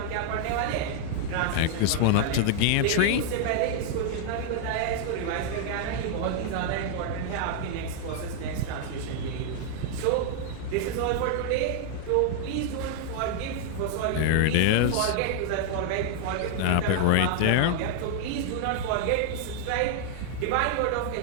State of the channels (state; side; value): different; both; correlation -0.01